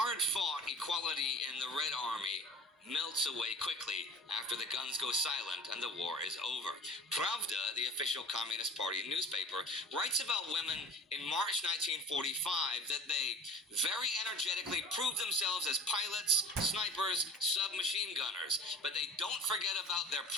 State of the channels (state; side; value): normal; both; correlation 0.40